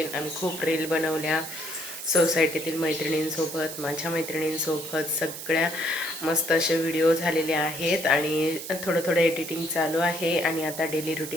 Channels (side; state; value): right; noise; hiss, 9 dB below the sound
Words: आम्ही खूप रील बनवल्या सोसायटीतील मैत्रिणींसोबत, माझ्या मैत्रिणींसोबत सगळ्या मस्त असे व्हिडिओ झालेले आहेत. आणि थोडं एडिटिंग चालू आहे. आणि आता डेली